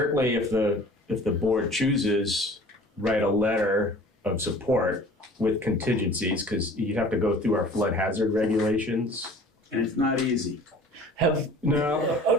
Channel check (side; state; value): both; normal; correlation 0.46